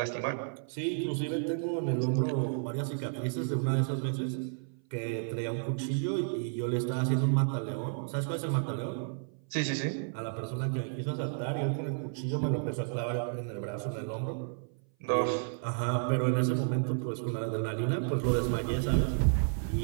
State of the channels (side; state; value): left; silent; 57 dB below the other